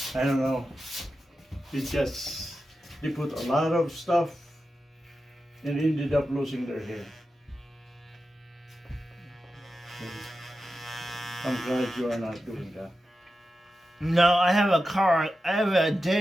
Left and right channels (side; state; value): both; normal; correlation 0.91